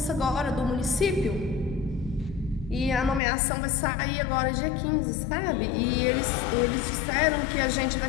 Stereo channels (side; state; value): right; drops out; at 3.2 s